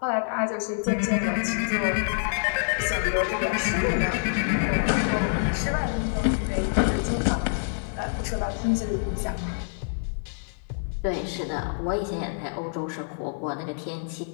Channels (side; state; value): right; silent; digital silence